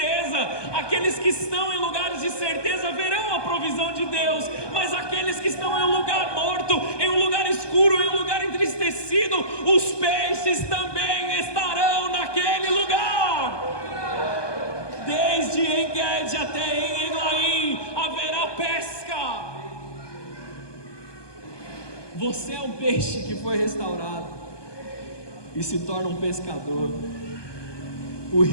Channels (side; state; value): right; late; 1.2 ms